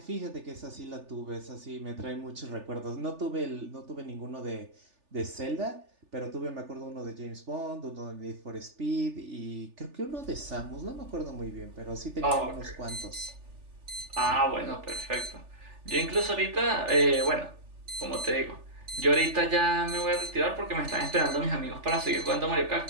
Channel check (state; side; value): late; left; 3.4 ms